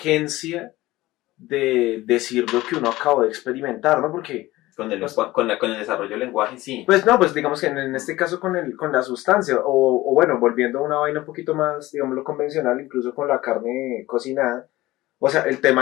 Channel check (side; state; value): right; quieter; 18.0 dB